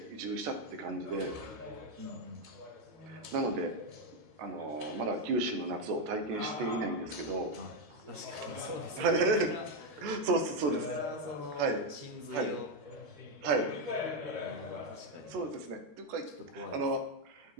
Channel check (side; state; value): left; late; 14 ms